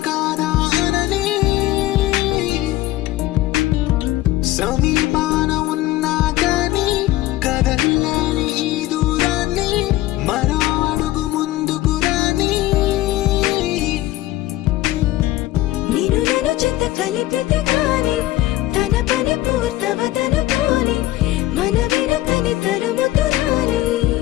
కాదా అనని సమీపాన ఉన్నా కానీ కదల్లేని ఈ దూరాన్ని మరో అడుగు ముందుకు రాని నేను నన్ను చెత్త కలిపితే గాని తన పని పూర్తవదనుకోని మన వెనకని తరుముతురాని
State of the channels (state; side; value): quieter; right; 16.3 dB